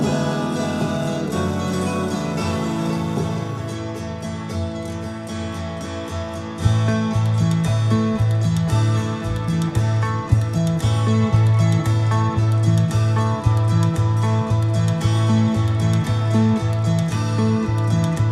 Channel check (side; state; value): both; identical; correlation 1.00